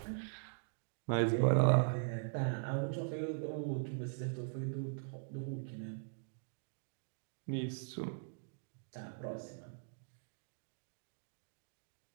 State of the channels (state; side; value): silent; left; digital silence